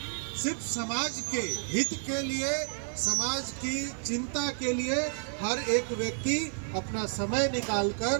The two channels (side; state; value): left; silent; digital silence